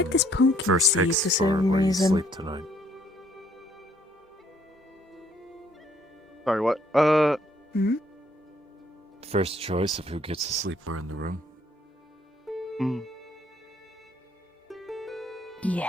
this pumpkin first seed fix for for some where you reason. sleep tonight? Sorry, what? Hmm? First choice of who gets to sleep where in the room. Yeah,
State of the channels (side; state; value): both; normal; correlation 0.65